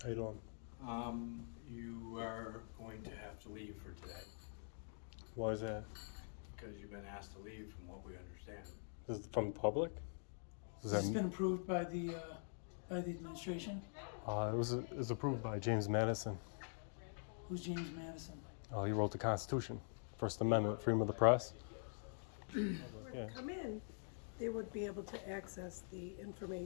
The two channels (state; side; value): silent; right; digital silence